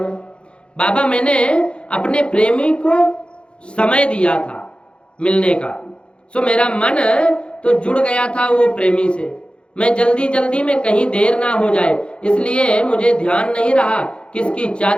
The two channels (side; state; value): right; late; 0.056 ms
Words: बाबा मैंने अपने प्रेमी को समय दिया था मिलने का, सो मेरा मन तो जुड़ गया था वो प्रेमी से। मैं जल्दी जल्दी में कहीं देर ना हो जाए इसलिए मुझे ध्यान नहीं रहा किसकी